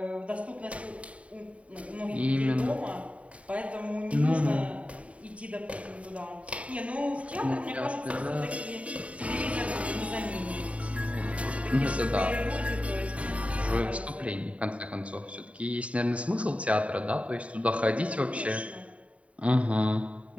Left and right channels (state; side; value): late; left; 0.065 ms